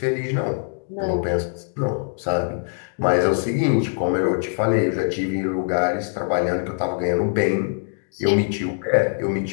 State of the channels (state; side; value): silent; right; 64 dB below the other